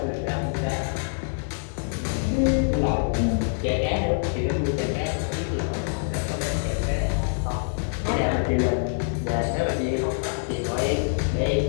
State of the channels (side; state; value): right; silent; 58 dB below the other